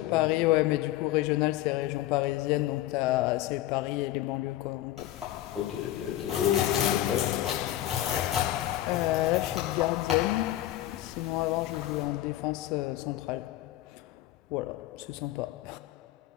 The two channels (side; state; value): right; quieter; 14.3 dB